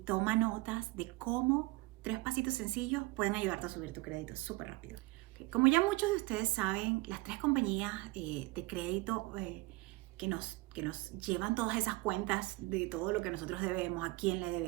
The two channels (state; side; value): quieter; left; 21.9 dB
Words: toma notas de cómo 3 pasitos sencillos pueden ayudarte a subir tu crédito súper rápido. Como ya muchos de ustedes saben, las 3 compañías de crédito que nos llevan todas esas cuentas de todo lo que nosotros debemos, a quién le